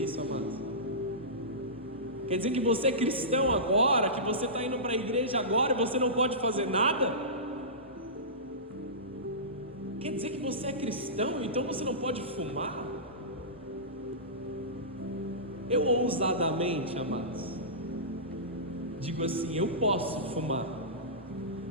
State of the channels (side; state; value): both; normal; correlation -0.20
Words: isso, amados. Quer dizer que você é cristão agora, que você está indo para a igreja agora e você não pode fazer nada? Quer dizer que você é cristão, então você não pode fumar? Eu ousadamente, amados, digo assim: eu posso fumar,